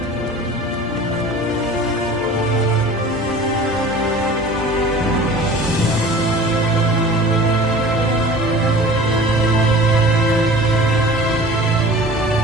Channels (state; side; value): normal; both; correlation 0.42